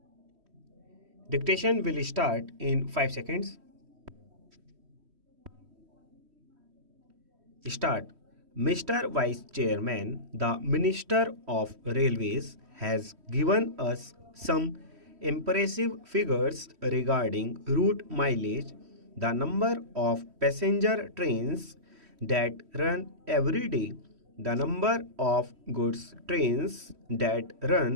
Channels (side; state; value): left; late; 3.1 ms